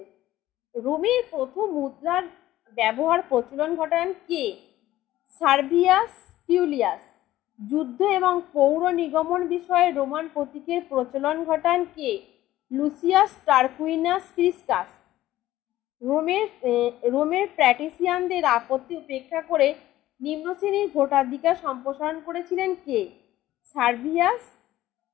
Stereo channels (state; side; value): quieter; right; 14.9 dB